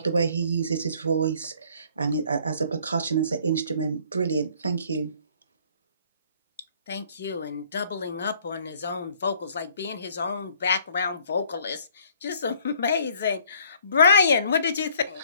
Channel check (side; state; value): both; inverted; correlation -0.59